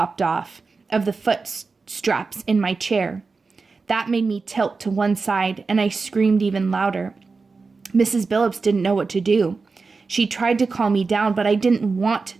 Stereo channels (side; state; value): left; quieter; 4.3 dB